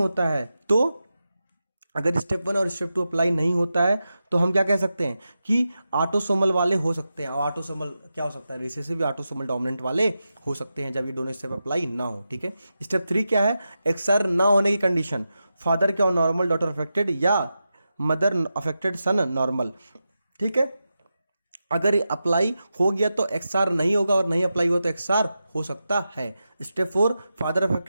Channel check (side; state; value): both; inverted; correlation -0.90